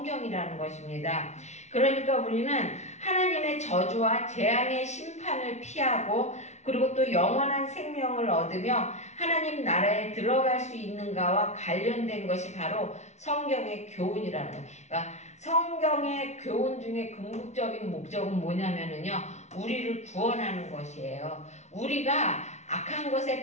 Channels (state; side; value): late; right; 0.32 ms